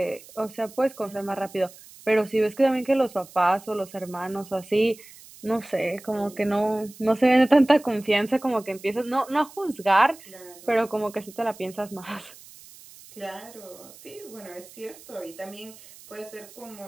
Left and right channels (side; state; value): right; noise; hiss, 21 dB below the sound